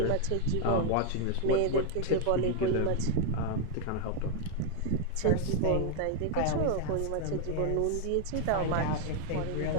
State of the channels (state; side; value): different; both; correlation 0.00